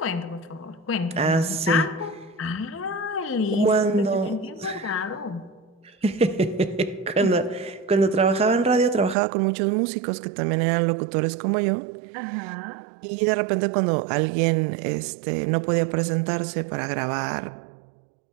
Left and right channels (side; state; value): left; drops out; at 9.2 s